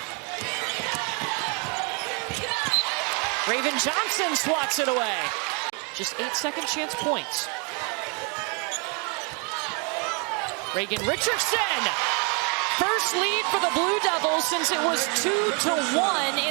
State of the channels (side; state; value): left; quieter; 34.9 dB